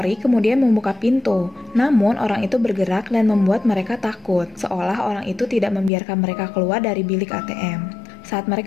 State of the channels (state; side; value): drops out; right; at 5.9 s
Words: kemudian membuka pintu, namun orang itu bergerak dan membuat mereka takut, seolah orang itu tidak membiarkan mereka keluar dari bilik ATM. Saat